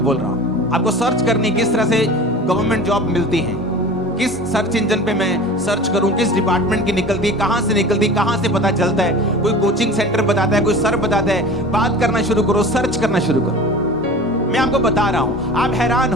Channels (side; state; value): both; normal; correlation 0.38